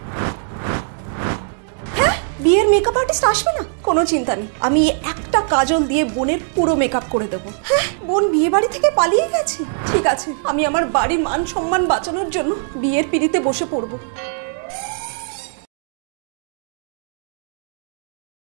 হ্যাঁ, বিয়ের মেকআপ আর্টিস্ট আসবে না? কোনো চিন্তা নেই, আমি একটা কাজল দিয়ে বোনের পুরো মেকআপ করে দেবো। হ্যাঁ, বোন বিয়ে বাড়ি থেকে পালিয়ে গেছে? ঠিক আছে, আমি আমার বাড়ির মান সম্মান বাঁচানোর জন্য বিয়ের পিড়িতে বসে পড়বো।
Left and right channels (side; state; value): left; silent; 66 dB below the other